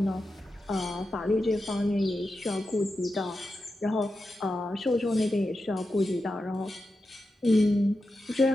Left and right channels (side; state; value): both; normal; correlation 0.90